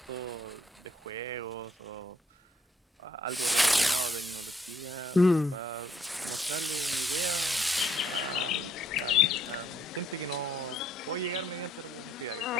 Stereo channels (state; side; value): normal; both; correlation 0.67